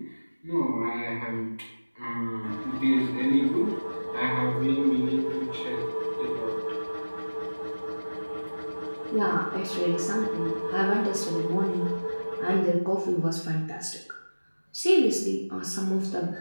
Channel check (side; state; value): both; inverted; correlation -1.00